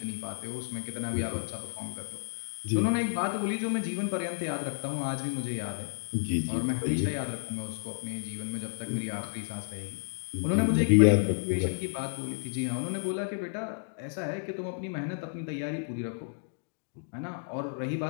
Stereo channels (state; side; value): silent; right; digital silence